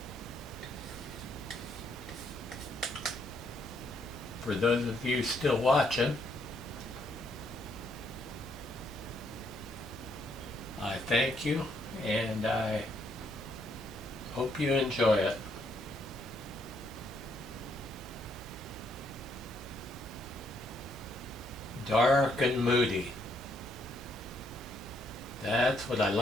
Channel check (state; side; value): normal; both; correlation 0.72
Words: For those of you still watching, I thank you and I hope you enjoy it. Dark and moody. That's what I